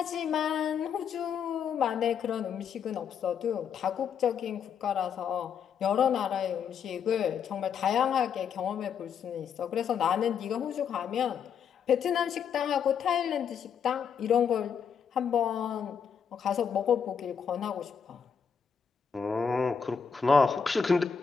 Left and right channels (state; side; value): quieter; right; 7.0 dB